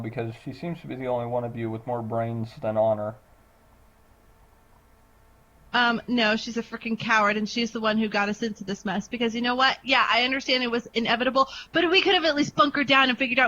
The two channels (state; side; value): identical; both; correlation 1.00